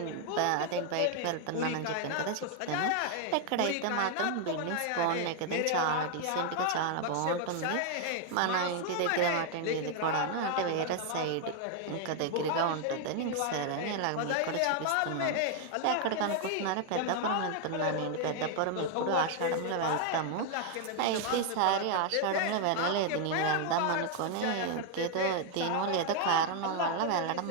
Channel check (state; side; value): different; both; correlation 0.00